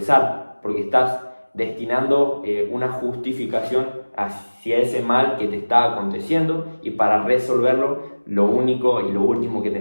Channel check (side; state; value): both; inverted; correlation -1.00